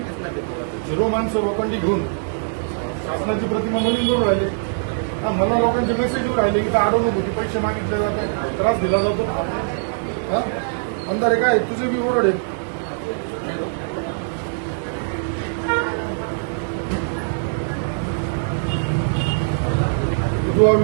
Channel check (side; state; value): left; silent; digital silence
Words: 0 माणसं लोकांनी घेऊन शासनाची प्रतिमा मलिन करून राहिले मला लोकांचे मेसेज राहिले की अडवणूक होती पैसे मागितले जाते त्रास दिला जातो हा अंधारे काय तुझे बी ओरड आहे विधवा